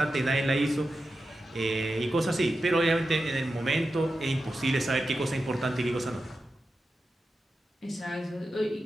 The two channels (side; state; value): both; normal; correlation 0.91